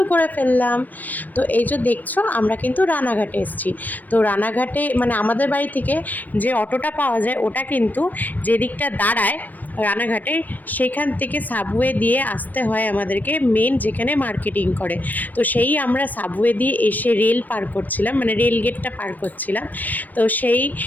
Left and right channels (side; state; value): right; late; 0.085 ms